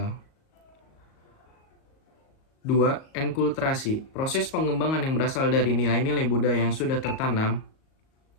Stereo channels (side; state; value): right; late; 38 ms